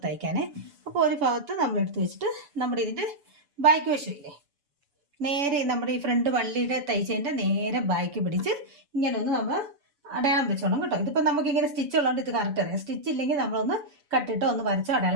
തയ്ക്കാനേ. അപ്പോൾ ഒരു ഭാഗത്ത് നമ്മൾ എടുത്ത് വെച്ചിട്ട് നമ്മുടെ ഇതിൻ്റെ ബാക്ക് വശമില്ലേ, നേരെ നമ്മുടെ ഈ ഫ്രണ്ട് വള്ളിയുടെ തയ്ച്ചതിൻ്റെ നേരെ ബാക്ക് പിടിച്ച് ഇങ്ങനെ ഒന്ന് നമ്മൾ അടയാളം വെച്ചോണം കേട്ടോ. ഇതിപ്പോൾ നമുക്കിങ്ങനെ സ്റ്റിച്ച് ഉള്ളതുകൊണ്ട് ഇത് കറക്റ്റ് അറിയാം. സ്റ്റിച്ച് ഇല്ലെങ്കിൽ നമ്മളൊന്ന് കട്ടിട്ട് ഒന്ന് വരച്ചോ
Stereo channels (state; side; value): late; left; 7.0 ms